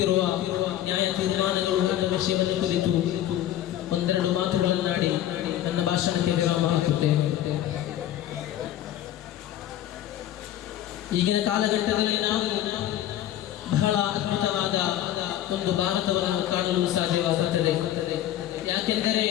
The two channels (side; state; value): right; quieter; 12.4 dB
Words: ನ್ಯಾಯ ತೀರ್ಮಾನಗಳು ಎಂಬ ವಿಷಯವನ್ನು ಕುರಿತು ಒಂದೆರಡು ಮಾತುಗಳನ್ನಾಡಿ ನನ್ನ ಭಾಷಣಕ್ಕೆ ವಿರಾಮ ಹಾಕುತ್ತೇನೆ. ಈಗಿನ ಕಾಲಘಟ್ಟದಲ್ಲಿ ನಾವು ಬಹಳ ಅದ್ಭುತವಾದ ಒಂದು ಭಾರತವನ್ನು ಕಾಣಲು ಸಾಧ್ಯವಾಗುತ್ತದೆ. ಯಾಕೆಂದರೆ